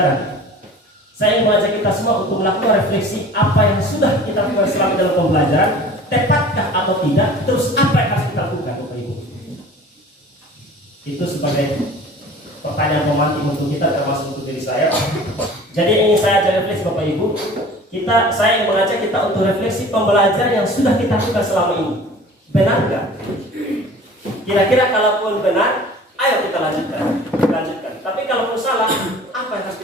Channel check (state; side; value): normal; both; correlation 0.44